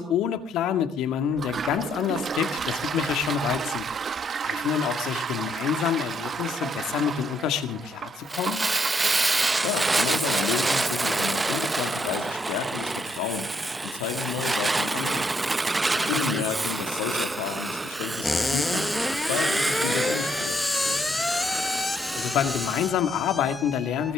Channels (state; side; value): normal; both; correlation 0.72